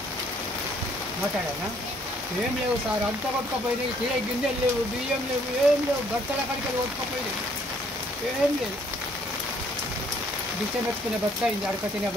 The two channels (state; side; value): normal; both; correlation 0.64